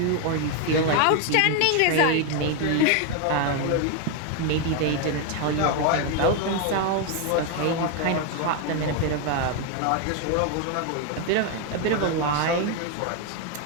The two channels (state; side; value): different; both; correlation 0.01